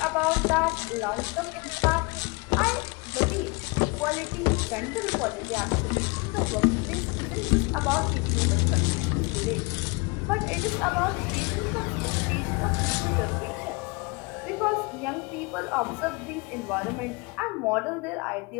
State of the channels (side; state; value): right; quieter; 28.6 dB